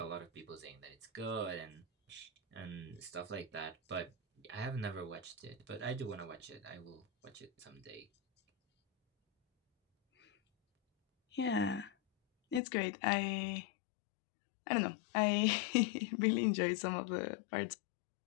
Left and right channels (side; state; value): right; drops out; at 12.6 s